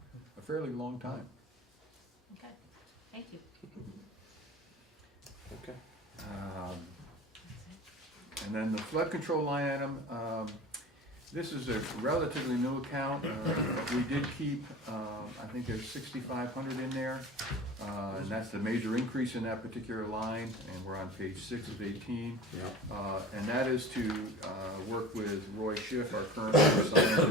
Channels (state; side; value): normal; both; correlation 0.37